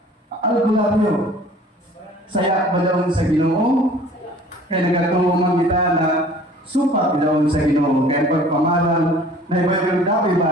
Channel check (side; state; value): both; normal; correlation 0.49